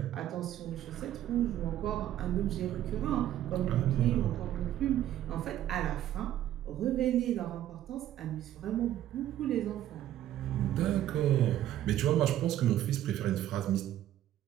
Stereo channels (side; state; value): left; quieter; 12.3 dB